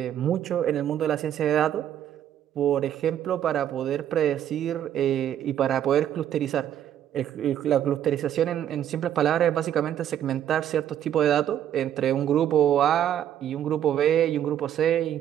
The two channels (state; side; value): quieter; left; 10.6 dB